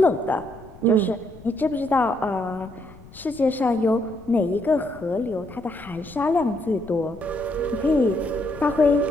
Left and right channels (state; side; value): noise; left; rumble, 20 dB below the sound